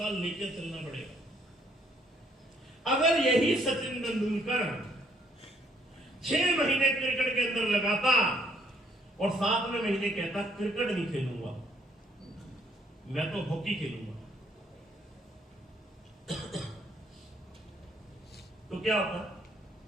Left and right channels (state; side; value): normal; both; correlation 0.67